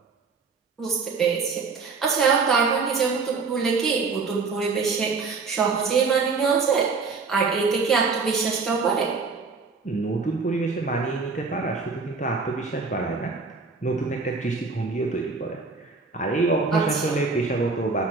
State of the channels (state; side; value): quieter; left; 4.6 dB